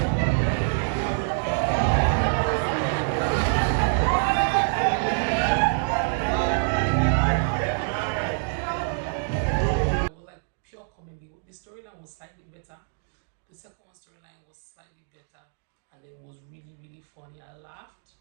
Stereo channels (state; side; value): silent; left; digital silence